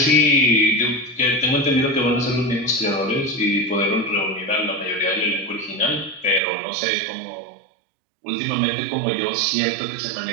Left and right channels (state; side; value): drops out; left; at 6.4 s